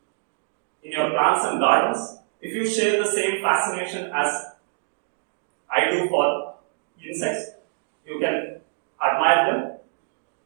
in your plants and gardens. If you share the same fascination as I do for insects, you can admire them.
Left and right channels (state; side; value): silent; left; digital silence